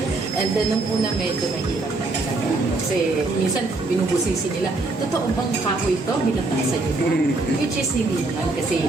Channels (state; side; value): quieter; left; 3.2 dB